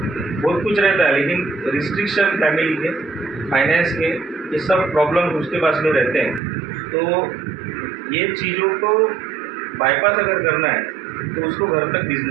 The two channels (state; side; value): drops out; left; at 6.4 s